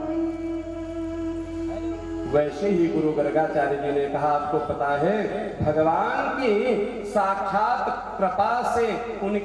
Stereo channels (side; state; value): both; identical; correlation 1.00